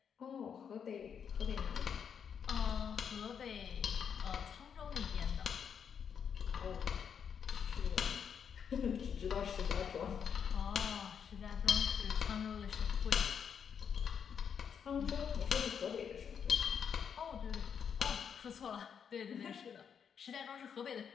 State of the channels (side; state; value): right; quieter; 7.4 dB